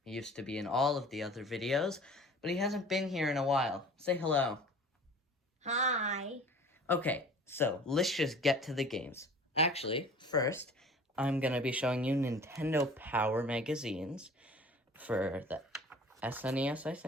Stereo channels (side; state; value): both; normal; correlation 0.45